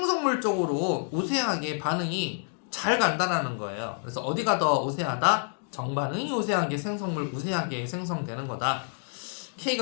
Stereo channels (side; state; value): right; silent; 59 dB below the other